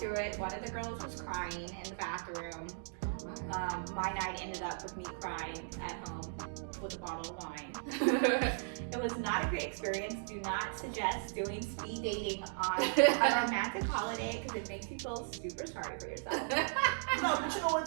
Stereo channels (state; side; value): silent; left; digital silence